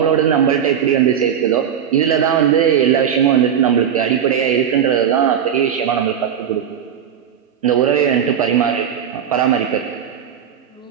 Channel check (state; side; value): quieter; left; 8.6 dB